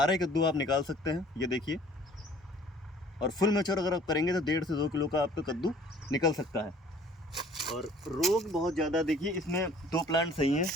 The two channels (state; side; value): normal; both; correlation 0.53